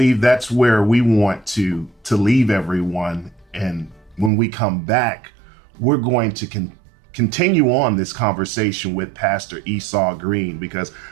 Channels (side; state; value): left; drops out; at 4.3 s